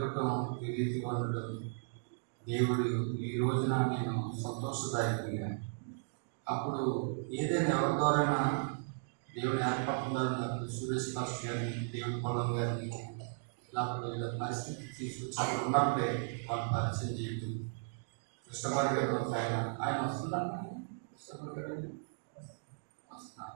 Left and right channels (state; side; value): silent; left; digital silence